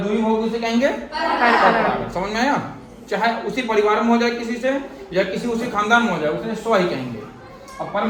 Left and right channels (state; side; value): identical; both; correlation 1.00